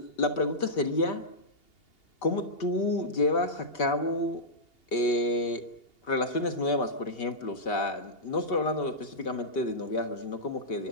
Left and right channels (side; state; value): right; late; 2.8 ms